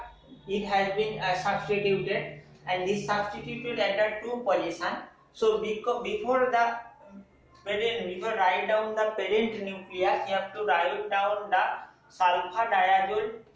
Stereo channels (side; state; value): both; identical; correlation 1.00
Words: it has been substituted, and this substituted at the 2 position. So before write down the parent nucleus, you have to write down the sulfadiazole